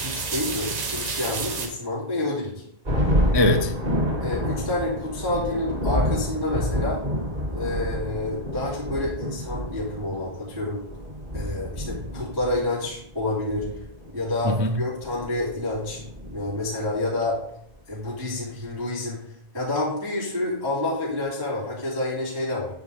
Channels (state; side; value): late; left; 1.9 ms